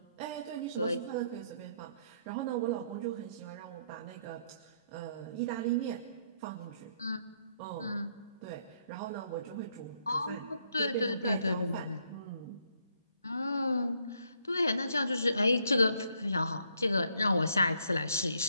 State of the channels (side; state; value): both; inverted; correlation -0.72